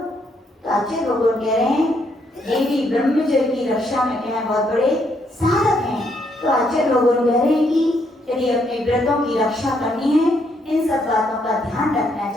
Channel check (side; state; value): both; normal; correlation 0.73